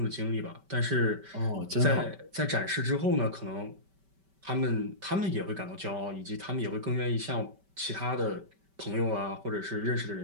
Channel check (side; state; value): left; late; 5.2 ms